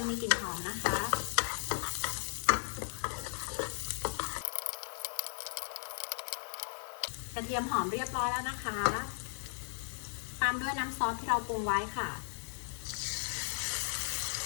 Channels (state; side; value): silent; right; 54 dB below the other